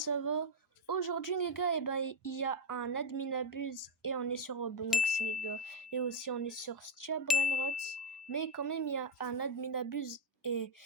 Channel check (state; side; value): normal; both; correlation 0.04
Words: va. Aujourd'hui les gars, il y a un admin abuse et on est sur Roblox les gars. Et aussi on est sur Stia Brainrot. Mais quand même il y a un admin abuse et